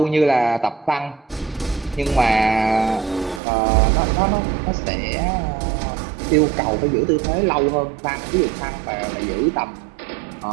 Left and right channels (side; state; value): left; drops out; at 3.4 s